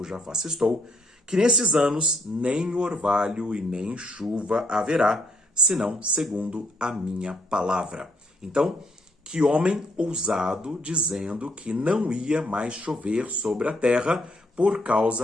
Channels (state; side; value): normal; both; correlation 0.71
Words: face estou, que nesses anos nem orvalho e nem chuva haverá, senão segundo a minha palavra. Então, que homem ousado dizendo que não ia mais chover sobre a terra por